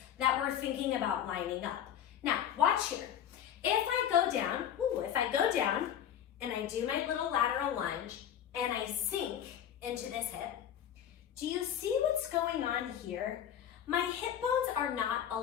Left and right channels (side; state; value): right; quieter; 9.9 dB